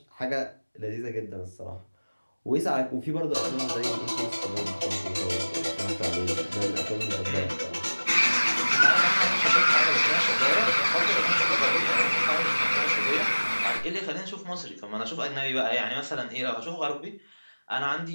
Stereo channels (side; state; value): both; inverted; correlation -1.00